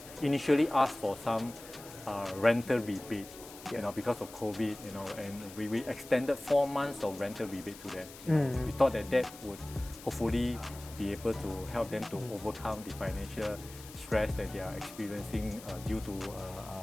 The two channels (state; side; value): noise; left; hiss, 17 dB below the sound